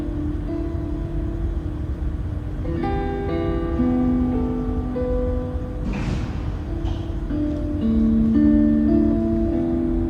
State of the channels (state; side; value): identical; both; correlation 1.00